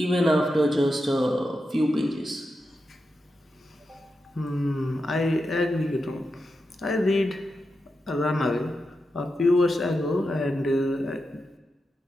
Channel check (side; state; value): both; normal; correlation 0.88